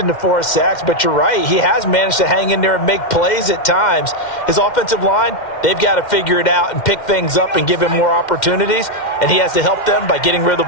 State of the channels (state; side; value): late; right; 2.1 ms